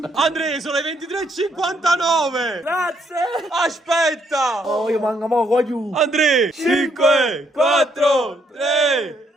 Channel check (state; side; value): normal; both; correlation 0.72